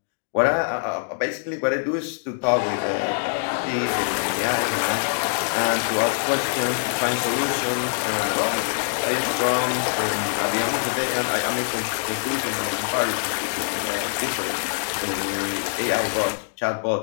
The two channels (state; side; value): silent; right; digital silence